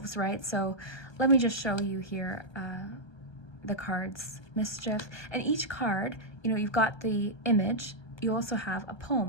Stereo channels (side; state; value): right; late; 1.3 ms